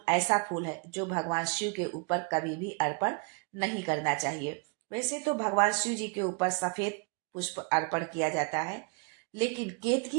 ऐसा फूल है जो भगवान शिव के ऊपर कभी भी अर्पण नहीं करना चाहिए। वैसे तो भगवान शिव जी के ऊपर सफेद पुष्प अर्पण किया जाता है, लेकिन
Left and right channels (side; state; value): left; quieter; 35.0 dB